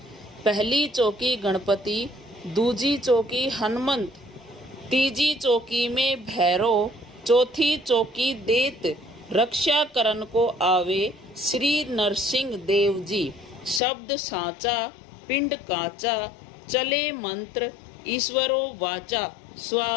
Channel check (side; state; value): right; drops out; at 13.8 s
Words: पहली चौकी गणपति, दूजी चौकी हनुमंत, तीजी चौकी में भैरव, चौथी चौकी देत, रक्षा करन को आवे श्री नरसिंह देव जी। शब्द साचा पिंड काचा, चले मंत्र ईश्वरो वाचा।